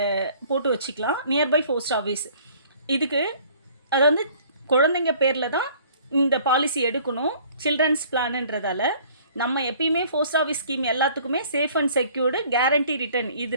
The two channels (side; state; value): both; inverted; correlation -0.54